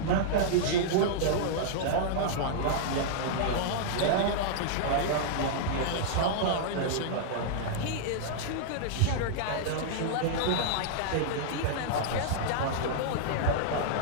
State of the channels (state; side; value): different; both; correlation -0.01